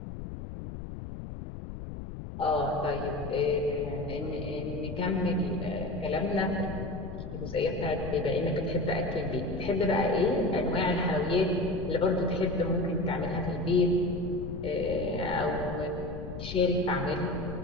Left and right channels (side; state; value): left; noise; rumble, 9 dB below the sound